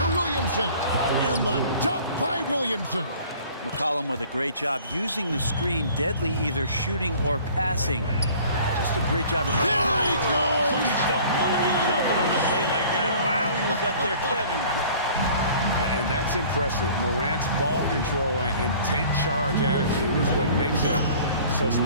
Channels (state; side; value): inverted; both; correlation -0.49